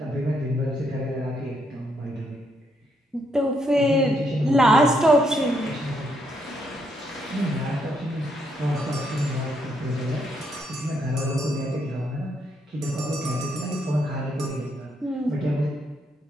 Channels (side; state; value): both; normal; correlation 0.75